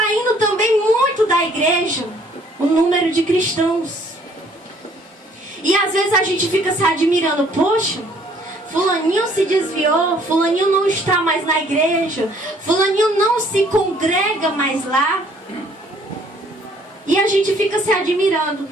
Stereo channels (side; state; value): both; normal; correlation 0.60